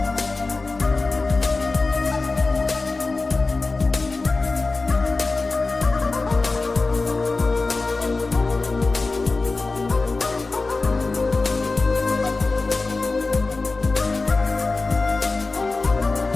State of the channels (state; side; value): quieter; right; 3.7 dB